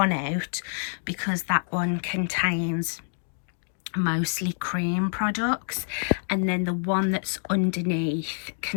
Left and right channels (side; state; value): right; silent; digital silence